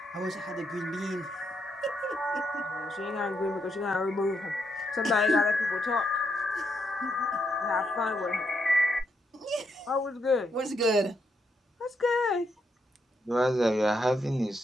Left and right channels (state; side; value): normal; both; correlation 0.79